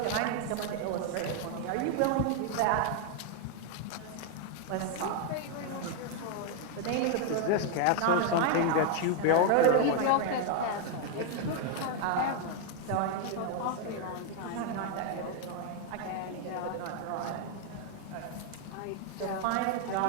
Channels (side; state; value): both; different; correlation 0.00